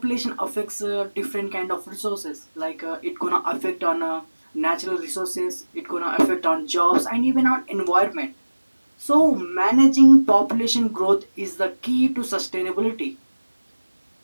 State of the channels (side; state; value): both; inverted; correlation -1.00